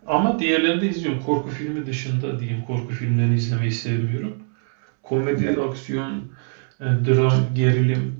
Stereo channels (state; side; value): silent; left; 64 dB below the other